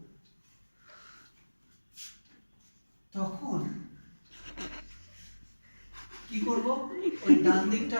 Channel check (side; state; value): both; inverted; correlation -1.00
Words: তখন কি করব ওই ডান দিকটা